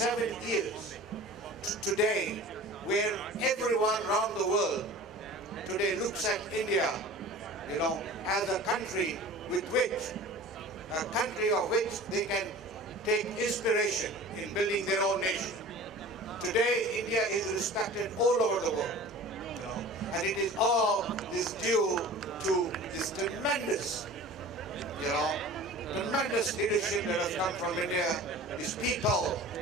years. Today, where everyone around the world today looks at India, as a country of which they can take inspiration in building their own nation. Today, India is respected all over the world, and it is all this due to this tremendous leadership that has come from India, these people,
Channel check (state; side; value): normal; both; correlation 0.40